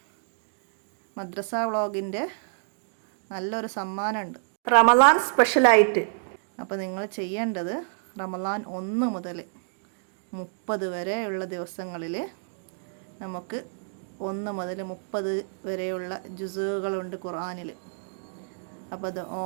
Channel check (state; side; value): silent; left; digital silence